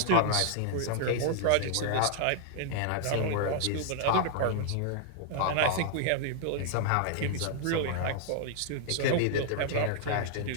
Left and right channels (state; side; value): different; both; correlation -0.01